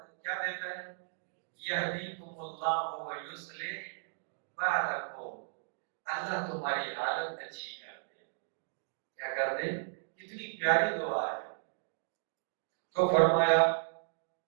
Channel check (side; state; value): left; silent; digital silence